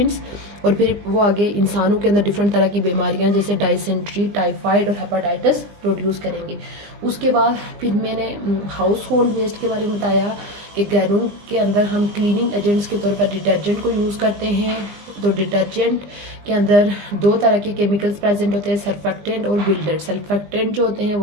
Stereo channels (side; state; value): left; late; 20 ms